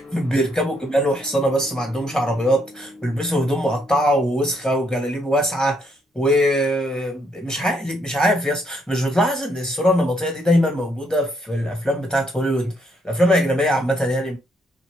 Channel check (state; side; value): normal; both; correlation 0.73